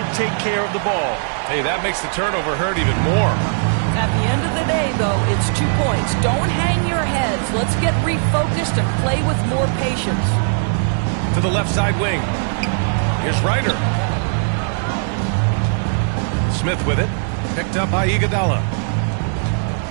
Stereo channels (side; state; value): left; silent; digital silence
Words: take care of the ball. Hey, that makes the turnover hurt even more. At the end of the day, though, it's 2 points. Don't hang your heads. Let's get refocused and play with more patience. To the left side wing. Here's Ryder. Smith with it. Picked up by Iguodala.